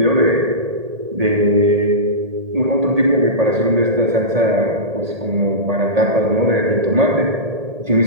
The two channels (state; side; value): late; left; 1.8 ms